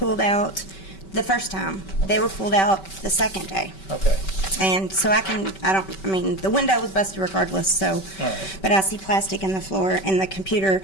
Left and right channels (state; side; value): late; right; 5.2 ms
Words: out the first time. They were pulled out the second day. Okay. And so the window was busted regardless, so, All right. but I see plastic in the floor and the computer